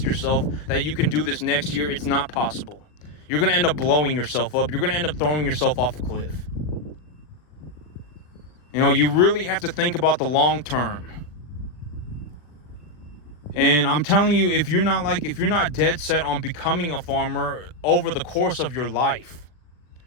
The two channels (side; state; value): right; late; 39 ms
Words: yourself that you can do this next year, it's not possible. You're going to end up blowing yourself up. You're going to end up throwing yourself off a cliff. You really have to think about the long term. And I'm telling you, if you're not dead set on becoming a farmer over the course of your life,